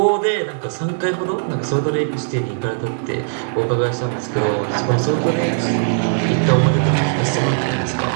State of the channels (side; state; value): left; silent; 66 dB below the other